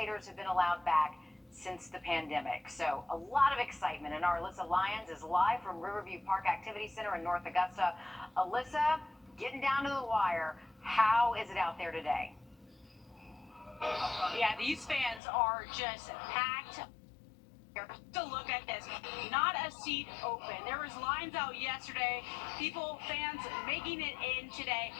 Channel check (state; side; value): drops out; right; at 15.2 s